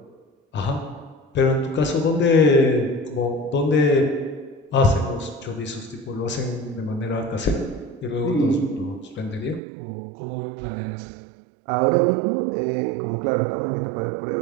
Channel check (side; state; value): left; drops out; at 9.6 s